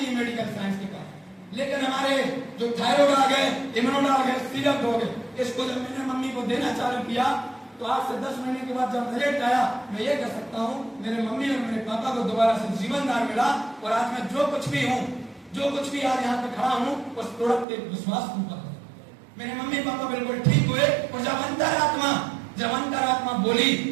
है मेडिकल साइंस के पास। लेकिन हमारे जो थायराइड आ गए, इम्यूनोड आ गए, सिरप हो गए, इसको जब मैंने मम्मी को देना चालू किया तो आज से 10 महीने के बाद जब रिजल्ट आया, मैं ये कह सकता हूँ मेरे मम्मी और मेरे पापा को दोबारा से जीवनदान मिला। और आज मैं जो कुछ भी हूँ, जो कुछ भी आज यहाँ पे खड़ा हूँ, उस प्रोडक्ट के विश्वास पर मेरे मम्मी पापा बिल्कुल ठीक हुए। और जब अंतरात्मा बोली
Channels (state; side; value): drops out; left; at 17.7 s